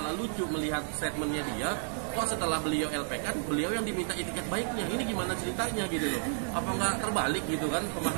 lucu melihat statementnya dia. Kok setelah beliau LP kan, beliau yang diminta itikat baiknya. Ini gimana ceritanya gitu loh? Apa nggak terbalik gitu kan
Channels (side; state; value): left; silent; 57 dB below the other